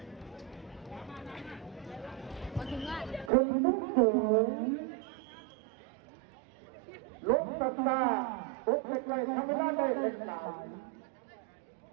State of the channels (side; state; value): left; drops out; at 3.3 s